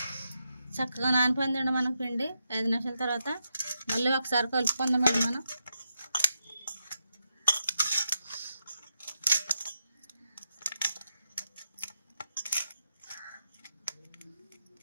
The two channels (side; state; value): both; inverted; correlation -0.85